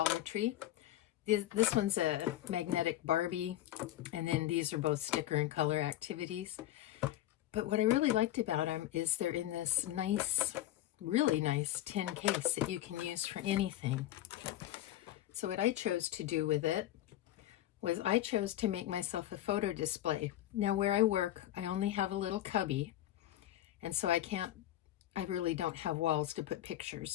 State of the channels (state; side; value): quieter; right; 13.6 dB